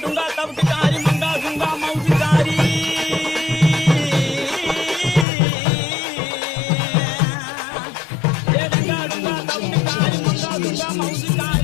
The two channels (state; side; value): drops out; right; at 5.2 s